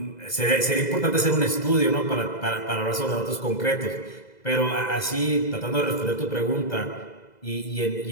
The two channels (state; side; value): late; right; 2.0 ms